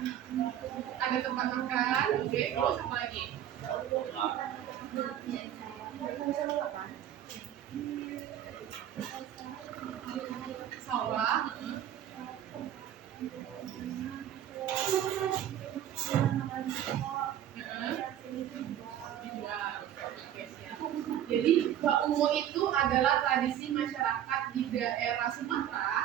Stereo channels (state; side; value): quieter; left; 11.0 dB